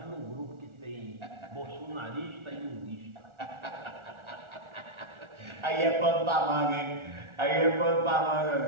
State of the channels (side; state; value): left; late; 1.4 ms